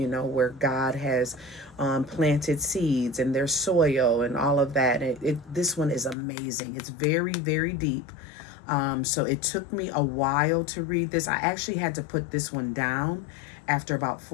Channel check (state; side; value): drops out; right; at 6.2 s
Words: where God has planted seeds and there's soil and all of that. This one is amazing. It's very, very deep. So it took me a while to read this. I actually had to put this one down after about